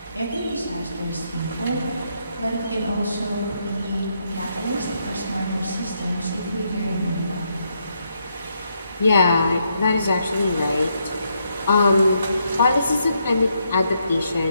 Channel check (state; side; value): inverted; both; correlation -0.77